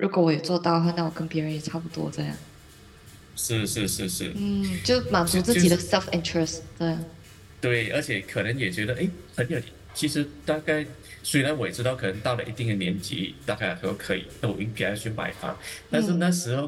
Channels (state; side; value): identical; both; correlation 1.00